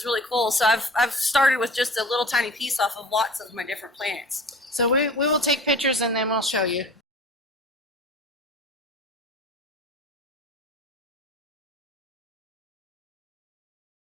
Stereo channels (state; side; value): normal; both; correlation 0.41